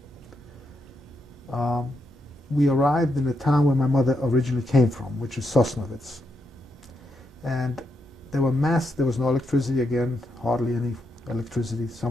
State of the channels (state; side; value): normal; both; correlation 0.81